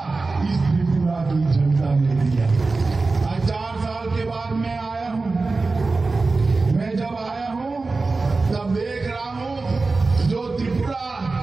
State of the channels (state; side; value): quieter; left; 3.7 dB